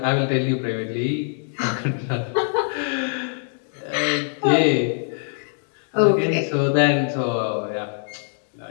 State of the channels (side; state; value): right; silent; 63 dB below the other